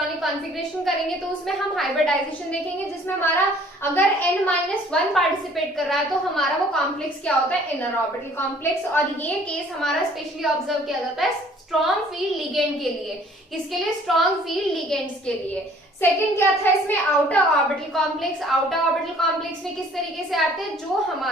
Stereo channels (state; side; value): normal; both; correlation 0.55